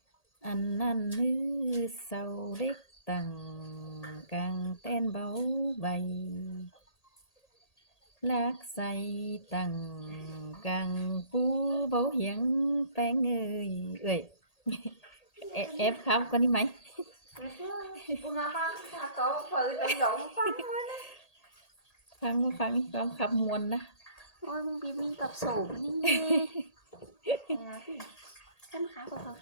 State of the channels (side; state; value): right; late; 1.8 ms